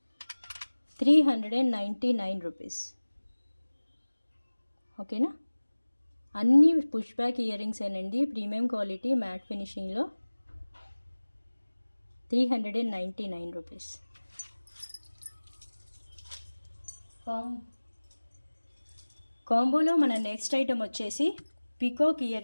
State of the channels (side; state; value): both; inverted; correlation -1.00